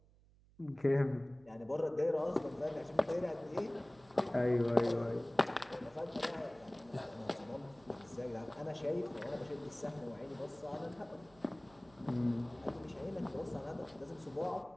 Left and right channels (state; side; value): noise; right; hum, 27 dB below the sound